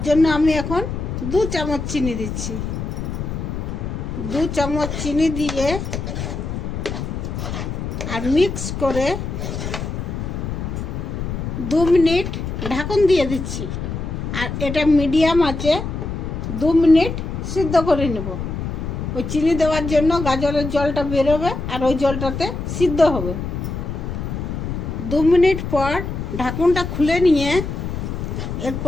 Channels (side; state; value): left; noise; rumble, 5 dB below the sound